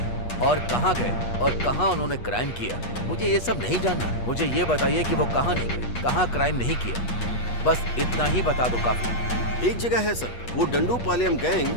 और कहां गए और कहां उन्होंने क्राइम किया, मुझे ये सब नहीं जानना। मुझे ये बताइए कि वो कहां नहीं गए, कहां क्राइम नहीं किया, बस इतना ही बता दो काफी। एक जगह है सर, वो डंडूपालयम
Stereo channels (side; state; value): right; late; 8.3 ms